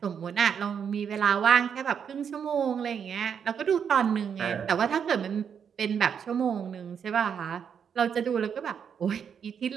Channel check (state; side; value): quieter; left; 7.4 dB